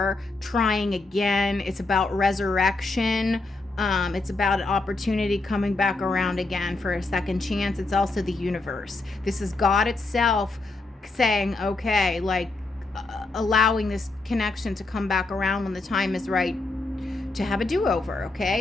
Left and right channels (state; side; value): quieter; right; 3.3 dB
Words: trying again. It's about resurrection. It's about an opportunity coming back around again for a second chance. It's also the universe. This is God itself saying, okay, like allowing this connection to come back around when the time is right to have a do-over,